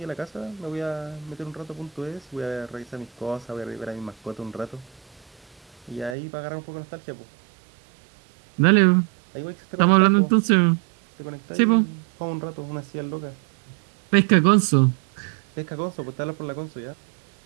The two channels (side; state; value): left; drops out; at 6.2 s